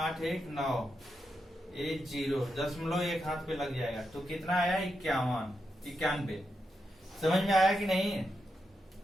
1 9, एक जीरो, दशमलव एक हाथ पे लग जाएगा तो कितना आया? 91। समझ में आया कि नहीं?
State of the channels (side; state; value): both; normal; correlation 0.85